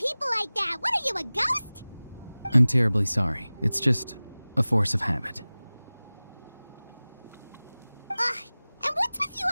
like that. What are you, a ghost? I'm terribly sorry. It's just a force of habit. And what's with you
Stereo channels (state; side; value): inverted; both; correlation -0.99